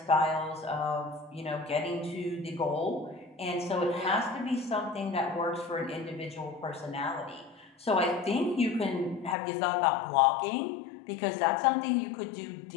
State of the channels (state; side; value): drops out; right; at 9.3 s